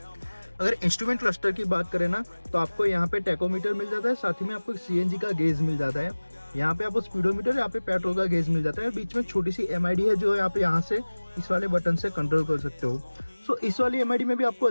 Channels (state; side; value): inverted; both; correlation -1.00